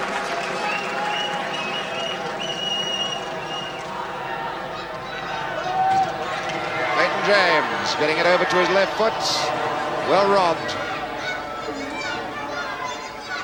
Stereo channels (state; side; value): identical; both; correlation 1.00